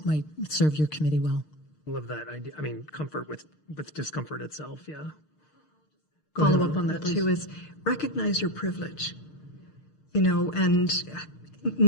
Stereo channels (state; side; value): late; right; 6.5 ms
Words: might serve your committee well. Love that idea. I mean, comfort with discomfort itself. Yeah. Follow up on that too is recognize your privilege. And